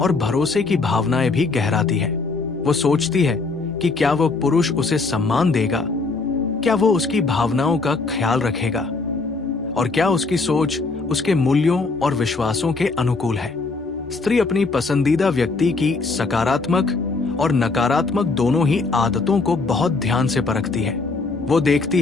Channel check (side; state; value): right; quieter; 3.9 dB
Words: भरोसे की भावनाएं भी गहराती है। वो सोचती है कि क्या वो पुरुष उसे सम्मान देगा, क्या वो उसकी भावनाओं का ख्याल रखेगा और क्या उसकी सोच उसके मूल्यों और विश्वासों के अनुकूल है। स्त्री अपनी पसंदीदा व्यक्ति की सकारात्मक और नकारात्मक दोनों ही आदतों को बहुत ध्यान से परखती है। वो देखती